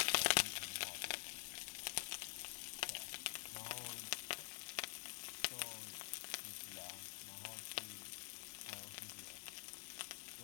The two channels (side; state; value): right; quieter; 37.1 dB